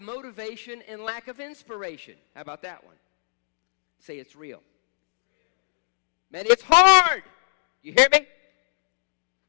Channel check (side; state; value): right; silent; digital silence